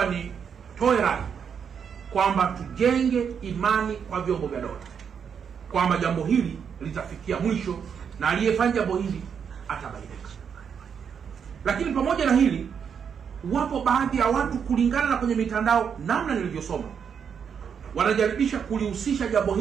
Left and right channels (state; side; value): quieter; left; 7.2 dB